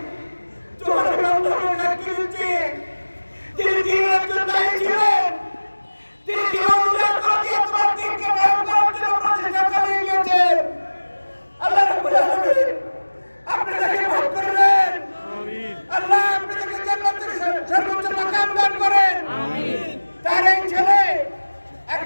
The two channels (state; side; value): inverted; both; correlation -1.00